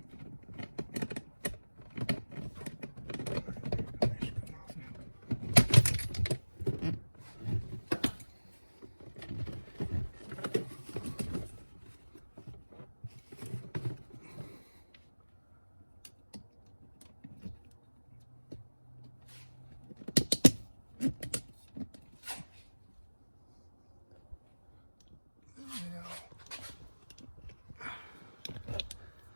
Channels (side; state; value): both; inverted; correlation -1.00